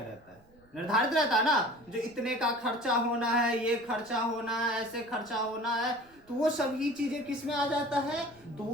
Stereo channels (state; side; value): noise; right; rumble, 29 dB below the sound